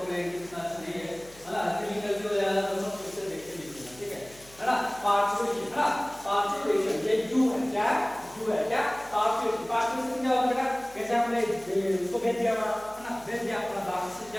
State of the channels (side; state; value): left; noise; hum, 24 dB below the sound